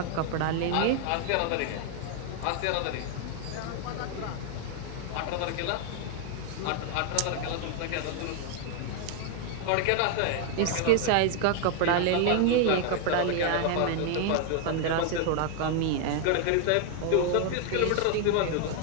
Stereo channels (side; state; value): both; different; correlation 0.00